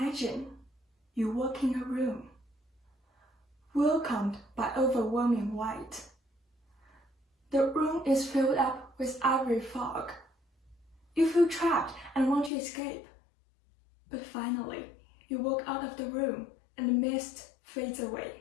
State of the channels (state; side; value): drops out; right; at 12.5 s